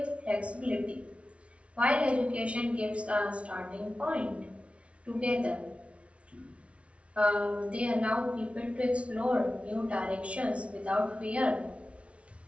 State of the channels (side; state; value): left; late; 0.062 ms